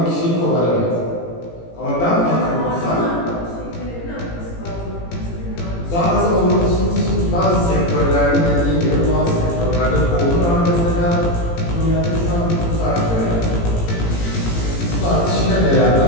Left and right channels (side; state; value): right; late; 18 ms